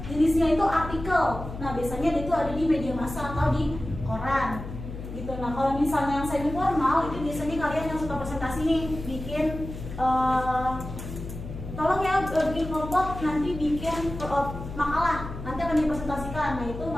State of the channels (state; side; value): noise; left; hum, 9 dB below the sound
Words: jenisnya itu artikel. Nah biasanya itu ada di media massa atau di koran gitu. Nah kalau misalnya yang semi formal itu biasanya kalian yang suka presentasi nih bikin tolong ya bikin kelompok nanti bikin makalah nanti akan dipresentasikan. Nah itu